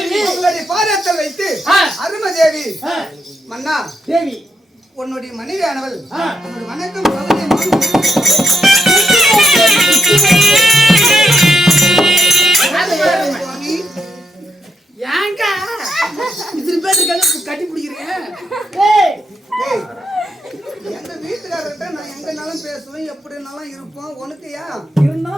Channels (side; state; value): both; normal; correlation 0.82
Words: உங்களுடைய பாதத்தில் வைத்து அருமதேவி மன்னா தேவி உன்னுடைய மனைவியானவள் வணக்கம் ஏங்க இத்தனை பேர் கட்டி பிடிக்கிறேன் எங்க வீட்டுக்காரர்கிட்ட நான் எங்கனாலும் பேசுவேன் எப்படினாலும் இருப்போம் உனக்கு ஏன்